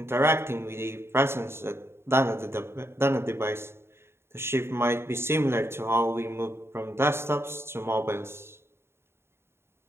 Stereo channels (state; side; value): late; left; 0.12 ms